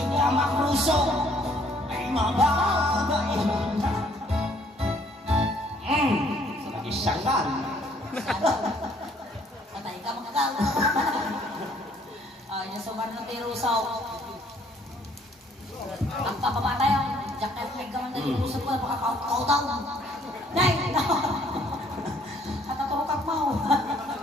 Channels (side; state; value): both; normal; correlation 0.63